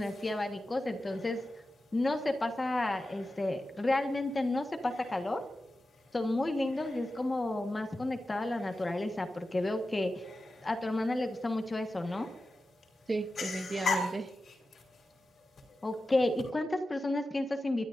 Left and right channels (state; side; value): normal; both; correlation 0.92